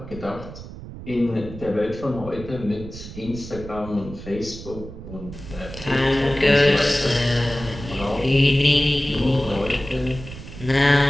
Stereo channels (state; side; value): noise; right; rumble, 13 dB below the sound